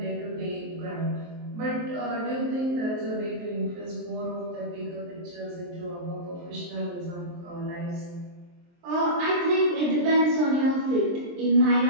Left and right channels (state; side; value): late; left; 23 ms